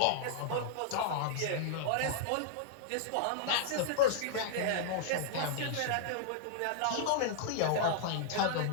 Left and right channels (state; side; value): different; both; correlation -0.01